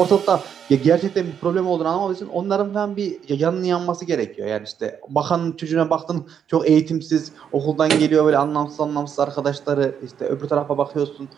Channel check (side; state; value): left; quieter; 8.1 dB